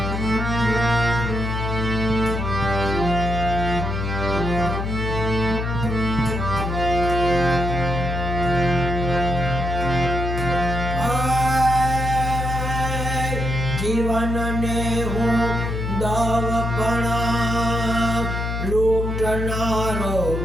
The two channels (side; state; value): left; noise; hum, 2 dB below the sound